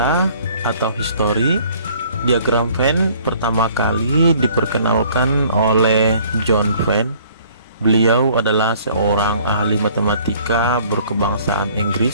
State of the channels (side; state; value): both; inverted; correlation -0.56